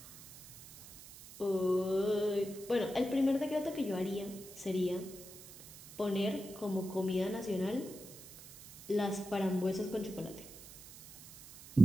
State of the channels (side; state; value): right; noise; hiss, 14 dB below the sound